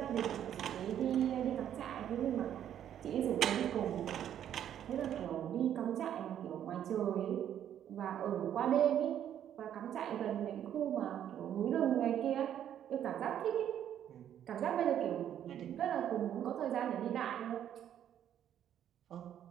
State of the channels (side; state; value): left; quieter; 10.2 dB